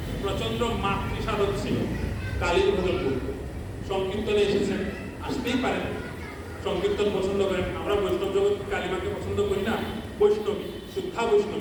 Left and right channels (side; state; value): both; identical; correlation 1.00